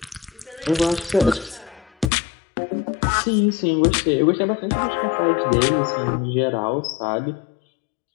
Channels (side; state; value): right; drops out; at 2.1 s